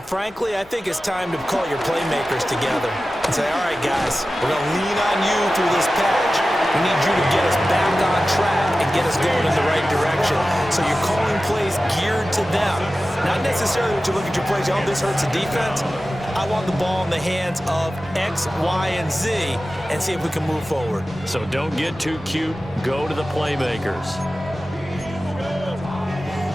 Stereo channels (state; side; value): noise; left; rumble, 26 dB below the sound